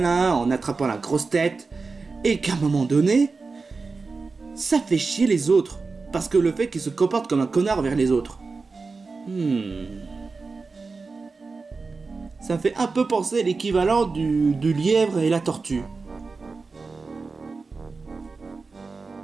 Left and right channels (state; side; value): quieter; left; 4.2 dB